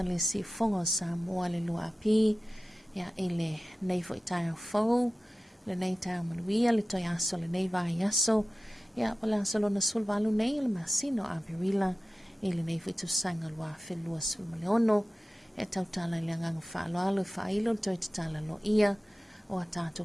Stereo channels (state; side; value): normal; both; correlation 0.95